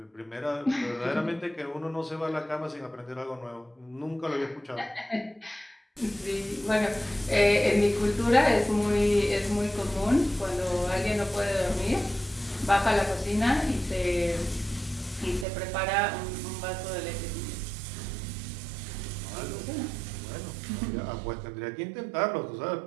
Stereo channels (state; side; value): drops out; left; at 15.5 s